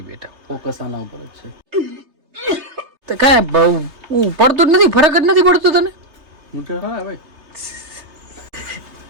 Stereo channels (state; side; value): late; left; 3.3 ms